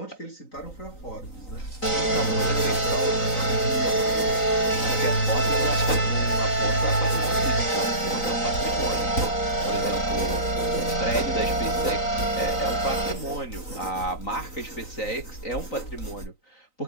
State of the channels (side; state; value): right; late; 3.9 ms